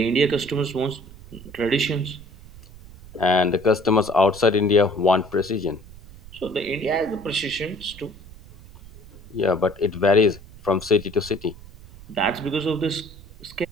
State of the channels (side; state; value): right; noise; rumble, 19 dB below the sound